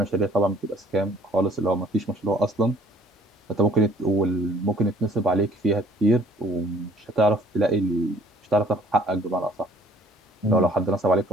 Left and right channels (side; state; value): both; normal; correlation 0.57